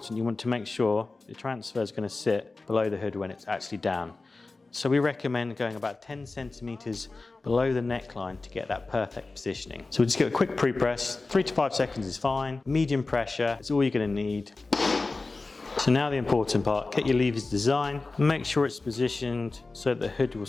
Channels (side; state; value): right; quieter; 3.5 dB